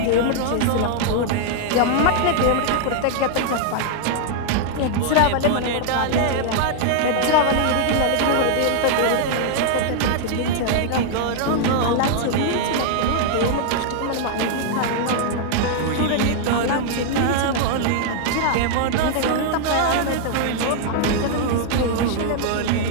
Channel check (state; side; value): different; both; correlation 0.00